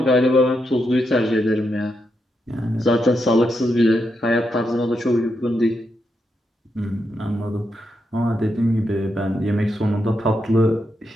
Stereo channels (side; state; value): both; normal; correlation 0.83